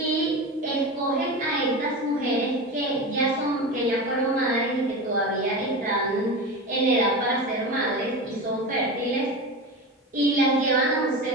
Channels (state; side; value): normal; both; correlation 0.25